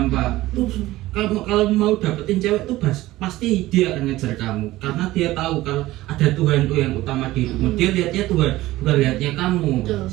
tuh kalau mau dapetin cewek tuh pasti dia akan ngejar kamu karena dia tahu kalau ada Tuhan tuh yang utama di hidupmu. Dia lihatnya Tuhan, bukan lihatnya kamu.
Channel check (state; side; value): quieter; left; 17.0 dB